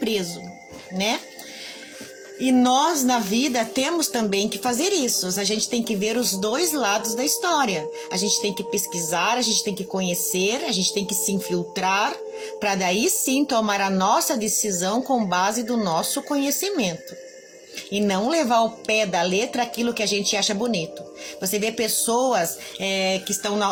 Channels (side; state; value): both; identical; correlation 1.00